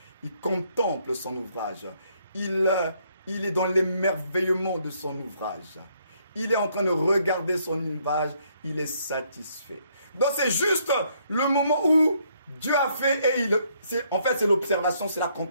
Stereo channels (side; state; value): both; inverted; correlation -0.70